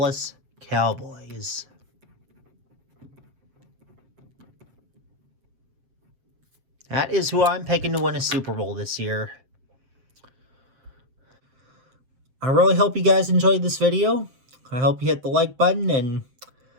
Cowboys. That is who I'm picking to win a Super Bowl this year. I really hope you guys enjoyed this video. I hope you hit the like button, and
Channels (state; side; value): late; left; 7.6 ms